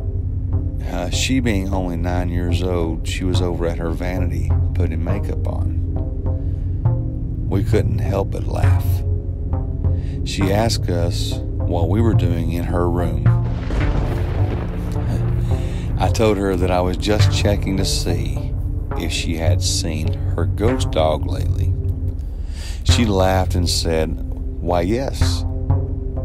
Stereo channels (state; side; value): identical; both; correlation 1.00